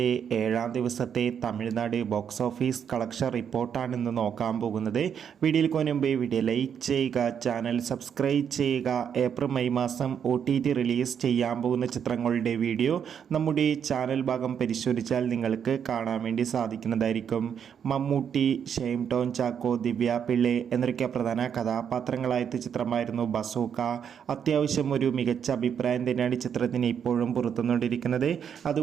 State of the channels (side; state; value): left; quieter; 8.0 dB